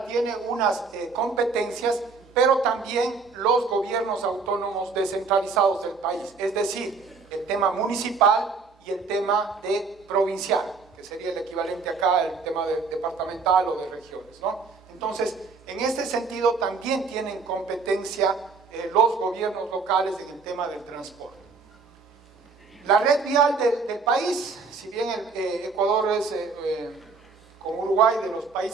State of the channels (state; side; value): quieter; left; 4.7 dB